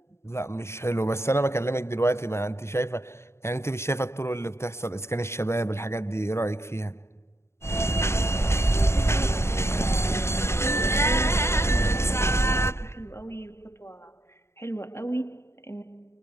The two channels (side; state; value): right; late; 0.13 ms